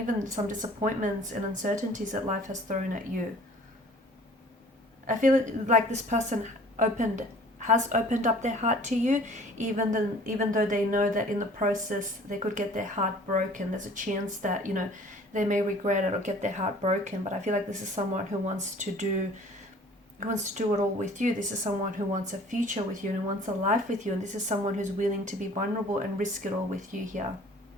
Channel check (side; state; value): both; normal; correlation 0.50